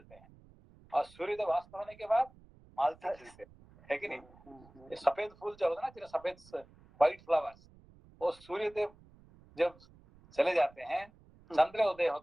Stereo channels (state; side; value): noise; right; rumble, 25 dB below the sound